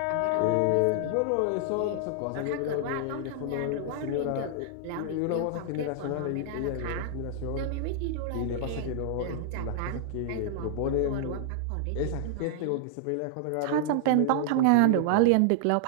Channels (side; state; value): both; different; correlation -0.01